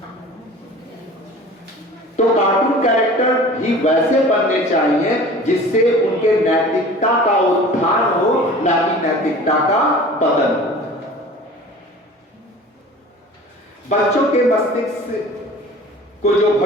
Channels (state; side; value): normal; both; correlation 0.42